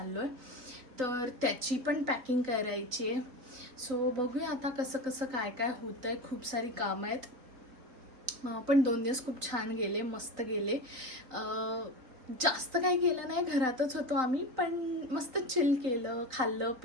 आहे. तर त्याची पण पॅकिंग करायची आहे. सो बघूया आता कसं काय होतं आहे. खूप सारी कामं आहेत. पण 2 दिवस खूप छान गेले. मस्त गेले. जास्त काही केलं नाही. घरातच होतो आम्ही पण मस्त चिल केलं. खाल्लं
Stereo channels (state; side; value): late; left; 3.9 ms